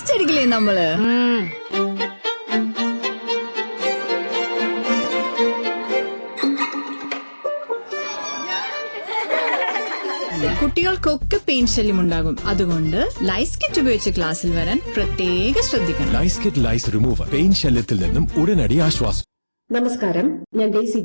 അടിക്കില്ലേ നമ്മള്? കുട്ടികൾക്കൊക്കെ പെയിൻ ശല്യം ഉണ്ടാകും. അതുകൊണ്ട് ലൈസ് കിറ്റ് ഉപയോഗിച്ച് ക്ലാസ്സിൽ വരാൻ പ്രത്യേകം ശ്രദ്ധിക്കണം. ലൈസ് കിറ്റ് ലൈസ് റിമൂവർ പെയിൻ ശല്യത്തിൽ നിന്നും ഉടനടി ആശ്വാസം. നമസ്കാരം, ഞാൻ ഡെയ്സി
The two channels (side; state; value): both; inverted; correlation -1.00